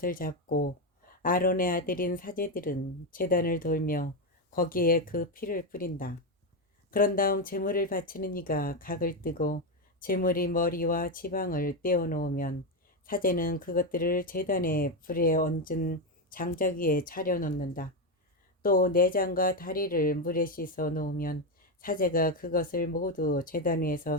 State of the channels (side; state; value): both; normal; correlation 0.09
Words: 잡고 아론의 아들인 사제들은 제단을 돌며 거기에 그 피를 뿌린다. 그런 다음 제물을 바치는 이가 각을 뜨고 제물의 머리와 지방을 떼어 놓으면 사제는 그것들을 제단의 불에 얹은 장작 위에 차려 놓는다. 또 내장과 다리를 물에 씻어 놓으면 사제가 그것을 모두 제단